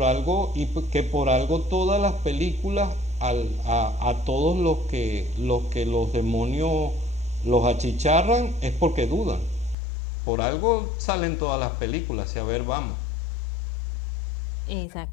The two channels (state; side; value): drops out; right; at 9.8 s